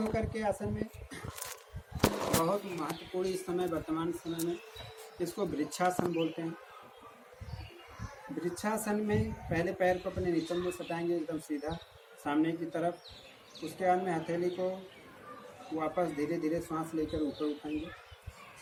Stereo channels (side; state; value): both; identical; correlation 1.00